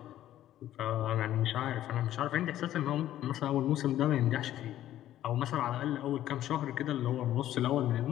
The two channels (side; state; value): right; quieter; 12.8 dB